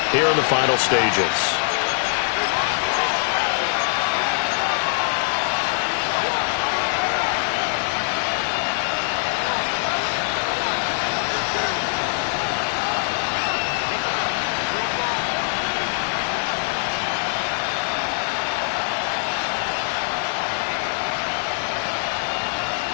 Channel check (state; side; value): silent; right; digital silence